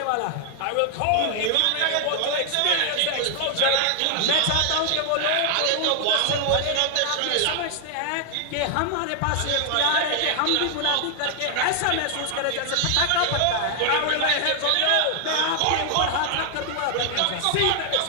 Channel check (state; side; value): different; both; correlation 0.00